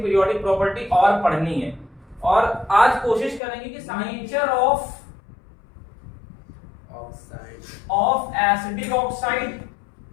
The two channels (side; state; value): right; drops out; at 3.4 s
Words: पीरियोडिक प्रॉपर्टी और पढ़नी है। और आज कोशिश करेंगे कि nature of acidic oxide